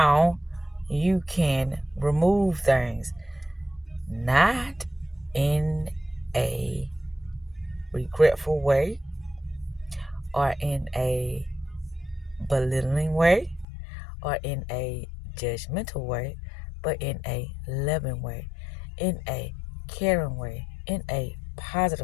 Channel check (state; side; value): drops out; right; at 13.7 s